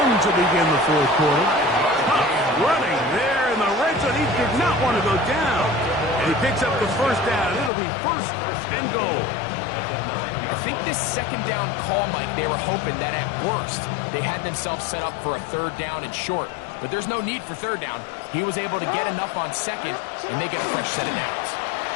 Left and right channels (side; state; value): right; drops out; at 7.7 s